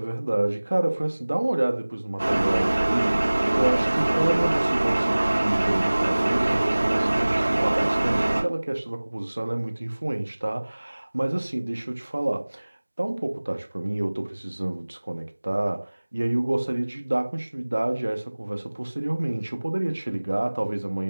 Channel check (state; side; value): inverted; both; correlation -1.00